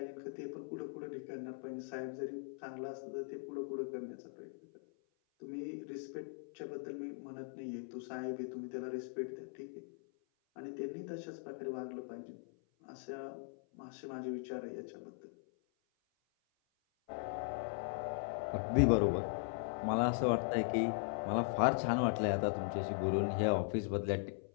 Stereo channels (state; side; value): silent; right; 51 dB below the other